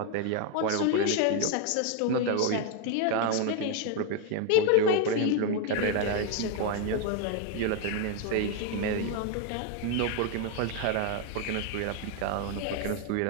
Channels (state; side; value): different; both; correlation 0.01